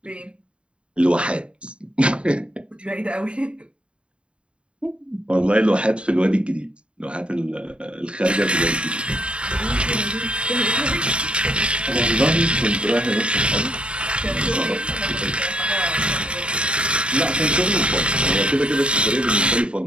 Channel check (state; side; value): late; left; 0.056 ms